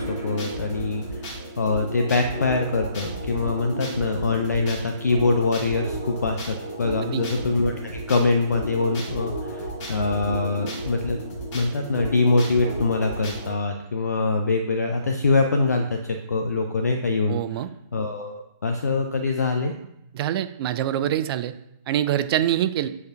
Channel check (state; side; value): inverted; both; correlation -0.64